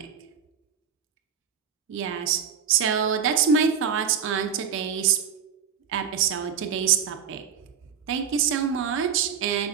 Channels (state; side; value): quieter; left; 7.5 dB